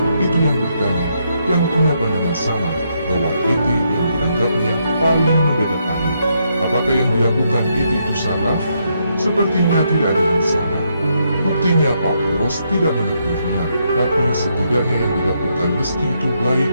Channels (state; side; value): inverted; both; correlation -0.77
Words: itu yang bertanya, yang punya pandangan sama, bahwa ET yang dianggapnya paling mendadak ahli. Apakah yang dilakukan ET itu salah? Sepertinya tidak ada yang salah. Buktinya Pak Bos tidak menegurnya, tapi setidaknya yang dilakukan meski itu baik